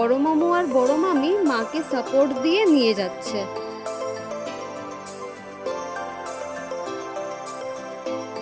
মামু আর বড় মামি মাকে সাপোর্ট দিয়ে নিয়ে যাচ্ছে।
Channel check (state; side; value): identical; both; correlation 1.00